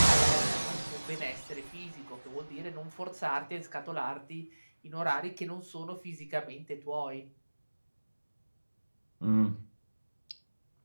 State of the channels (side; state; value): both; inverted; correlation -1.00